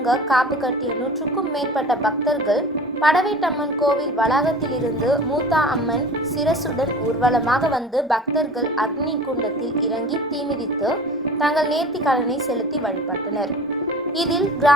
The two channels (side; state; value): both; normal; correlation 0.39